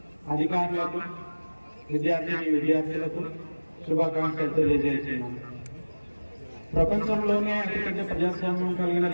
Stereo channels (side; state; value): both; inverted; correlation -1.00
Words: అధికారులకు, విద్యార్థులకు శుభాకాంక్షలు తెలియజేస్తున్నాను. ప్రపంచంలోనే అతిపెద్ద ప్రజాస్వామ్యం కలిగిన